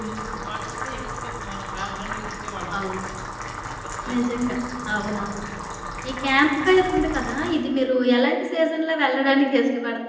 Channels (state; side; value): identical; both; correlation 1.00